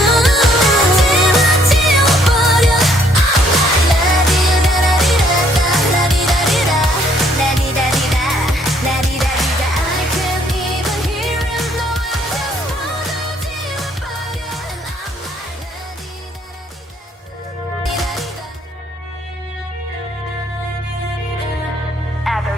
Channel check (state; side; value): normal; both; correlation 0.66